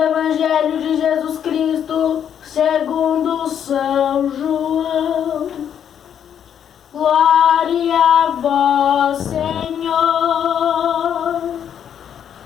Evangelho de Jesus Cristo, segundo São João. Glória a vós, Senhor.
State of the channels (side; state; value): right; quieter; 8.9 dB